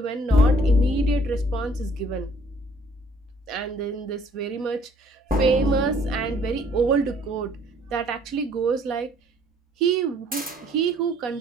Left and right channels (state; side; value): normal; both; correlation 0.60